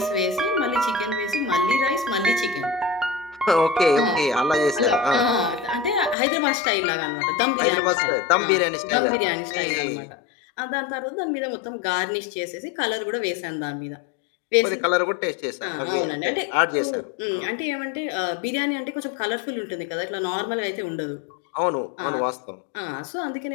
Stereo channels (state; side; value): drops out; right; at 6.2 s